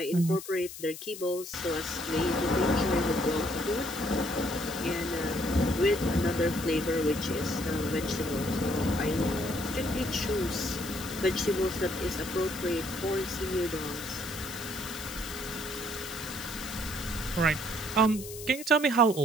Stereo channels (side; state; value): left; noise; hiss, 12 dB below the sound